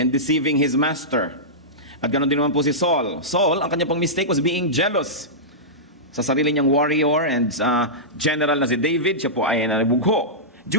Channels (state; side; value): normal; both; correlation -0.14